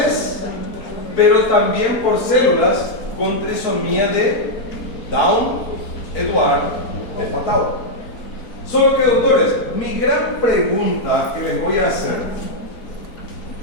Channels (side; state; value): right; late; 4.3 ms